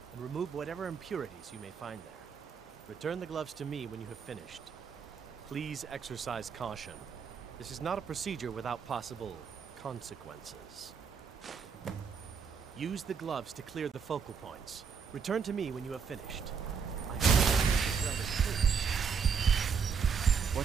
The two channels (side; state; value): left; quieter; 6.2 dB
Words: and remove whatever impurities you may find there. Return the gloves to me when you have finished. Please exercise caution. This is not a procedure without possible consequences. Use the gloves to clear the focal points. Return to me when you have finished.